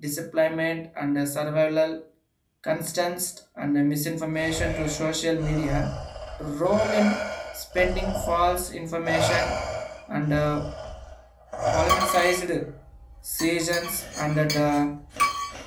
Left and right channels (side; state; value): both; identical; correlation 1.00